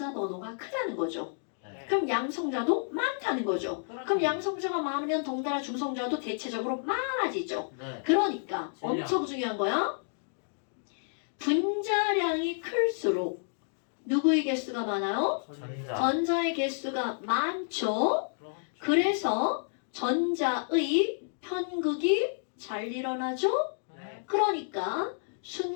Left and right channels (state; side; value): silent; right; digital silence